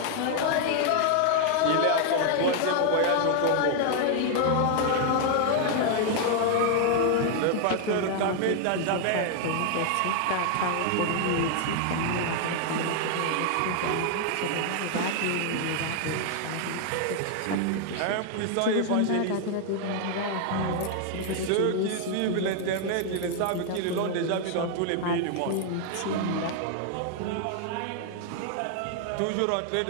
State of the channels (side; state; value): both; different; correlation 0.00